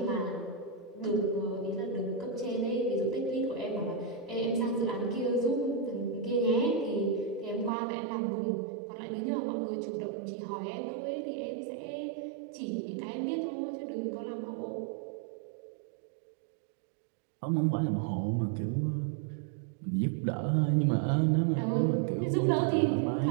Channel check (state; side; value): drops out; left; at 7.7 s